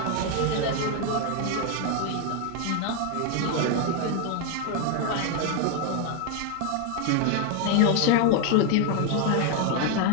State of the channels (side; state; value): both; different; correlation 0.01